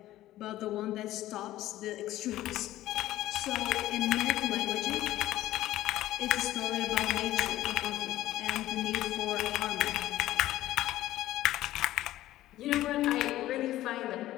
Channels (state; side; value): quieter; right; 14.9 dB